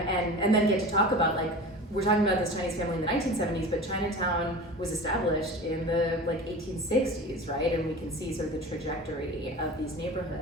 then get to talk about, like, we're talking about this Chinese family in the 1970s, but Chinatown was established in the, like, 1860s, right? And we can see sort of the trajectory of these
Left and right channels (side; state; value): both; normal; correlation 0.35